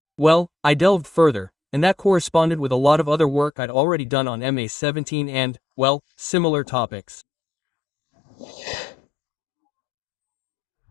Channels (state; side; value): drops out; right; at 3.5 s